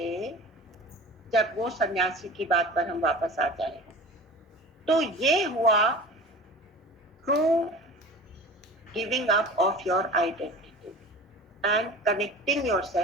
जब वो सन्यासी की बात पर हम वापस आ जाए, तो ये हुआ true giving up of your identity and connecting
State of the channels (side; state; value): both; normal; correlation 0.38